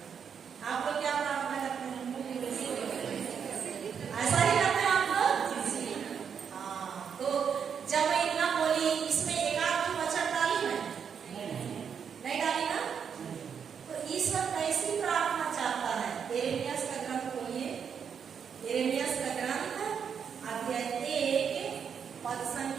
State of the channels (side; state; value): left; quieter; 7.2 dB